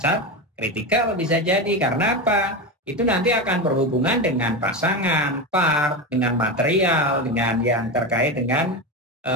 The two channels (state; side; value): normal; both; correlation 0.18